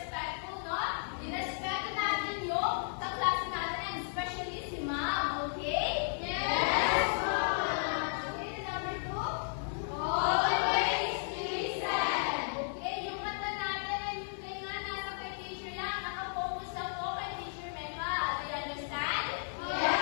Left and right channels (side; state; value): right; silent; 55 dB below the other